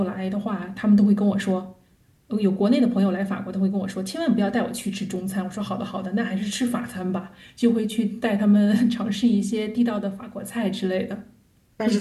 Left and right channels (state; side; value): identical; both; correlation 1.00